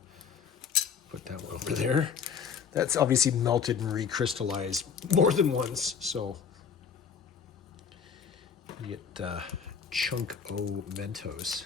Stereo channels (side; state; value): right; quieter; 6.7 dB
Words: put that one over there. That's obviously melted and recrystallized more than once, so you get chunk O